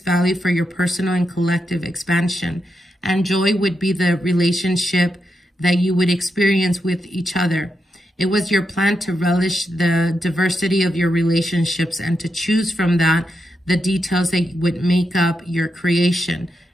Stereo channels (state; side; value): normal; both; correlation 0.85